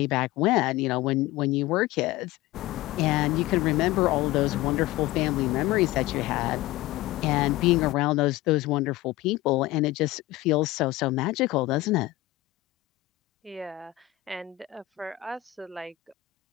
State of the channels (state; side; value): quieter; right; 17.4 dB